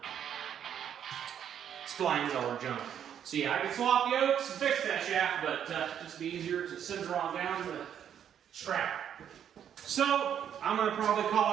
splines all junk. So yeah, I could swap yokes and fix that shaft, but just be easier to send her on down to the strap. So I'm gonna probably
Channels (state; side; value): quieter; left; 9.2 dB